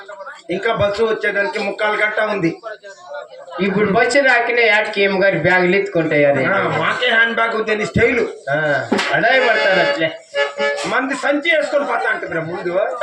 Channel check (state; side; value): identical; both; correlation 1.00